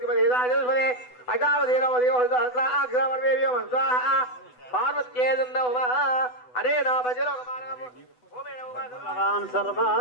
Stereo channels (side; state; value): right; late; 8.1 ms